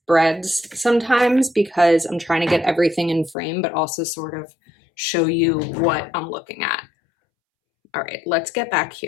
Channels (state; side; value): drops out; right; at 3.4 s